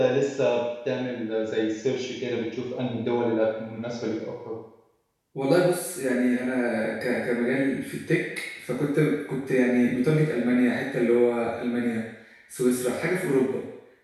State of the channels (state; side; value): identical; both; correlation 1.00